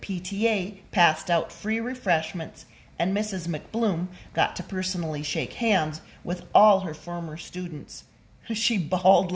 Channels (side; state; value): both; identical; correlation 1.00